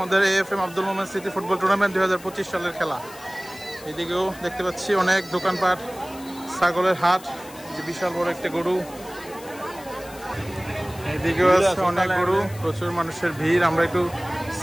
AFM আব্দুল মোমেন স্মৃতি ফুটবল টুর্নামেন্ট 2025 সালের খেলা। এদিকেও দেখতে পাচ্ছি অনেক দোকানপাট, ছাগলের হাট, যে বিশাল বড় একটা গরু। এদিকেও আছে অনেক গরু, প্রচুর মানুষের ভিড়। আমরা একটু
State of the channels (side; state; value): left; noise; hiss, 19 dB below the sound